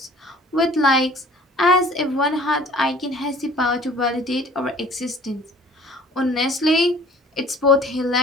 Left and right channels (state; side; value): normal; both; correlation 0.50